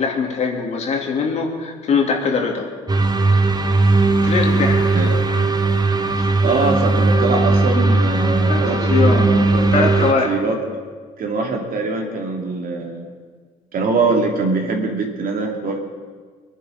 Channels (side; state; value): both; normal; correlation 0.66